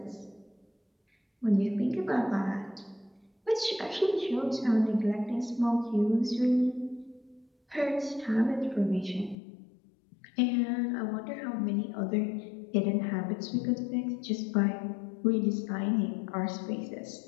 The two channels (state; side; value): drops out; right; at 9.3 s